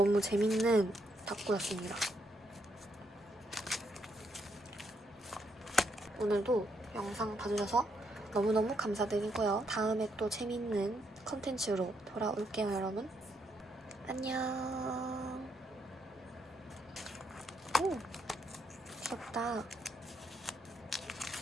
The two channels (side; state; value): both; normal; correlation 0.76